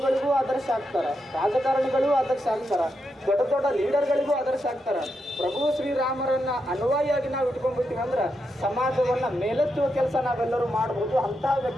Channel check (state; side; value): normal; both; correlation 0.84